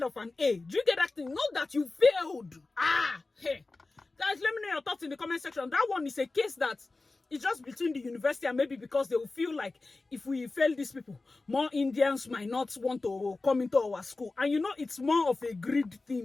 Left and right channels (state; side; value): quieter; right; 3.4 dB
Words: of an A. Do you get that thing? Not that you failed. Hey. Guys, let me know your thoughts in the comment section. That one is a case that it's just between the university and maybe because they will feel like if we fail these people, more Indians might not want to come into our school. And you know, it's more of a greed